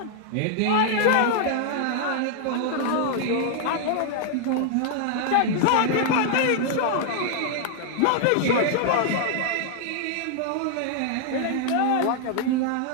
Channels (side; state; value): both; different; correlation 0.00